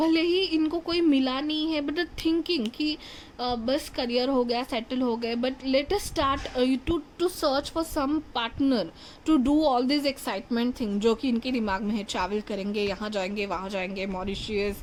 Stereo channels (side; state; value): both; identical; correlation 1.00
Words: ही इनको कोई मिला नहीं है, बट थिंकिंग कि बस करियर हो गया, सेटल हो गए, but let us start to search for some partner to do all this excitement thing, जो कि इनके दिमाग में है। ट्रैवल करेंगे, यहाँ जाएंगे, वहाँ जाएंगे, Mauritius,